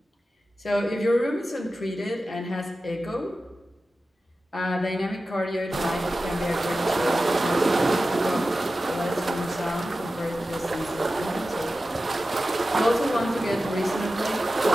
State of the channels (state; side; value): normal; both; correlation 0.94